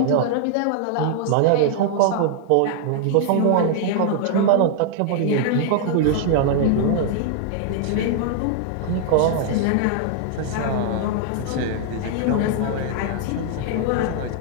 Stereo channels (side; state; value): both; different; correlation -0.01